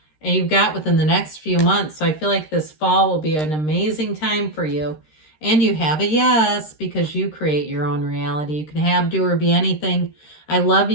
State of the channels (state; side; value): late; right; 13 ms